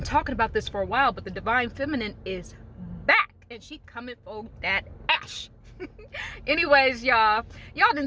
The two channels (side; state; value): both; identical; correlation 1.00